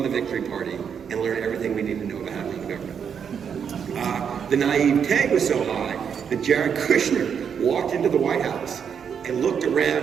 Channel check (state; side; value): quieter; left; 7.4 dB